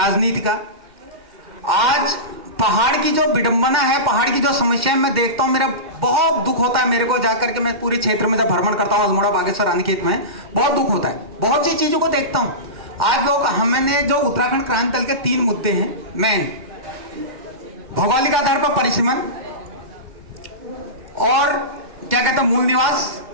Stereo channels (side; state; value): left; late; 2.1 ms